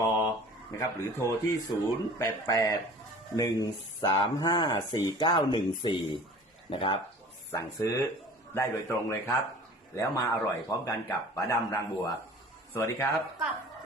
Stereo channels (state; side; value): normal; both; correlation 0.44